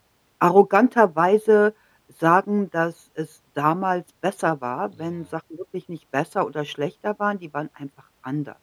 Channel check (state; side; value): identical; both; correlation 1.00